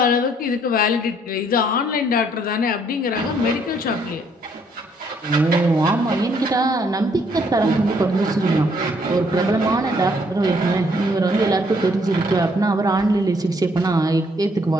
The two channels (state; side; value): normal; both; correlation 0.67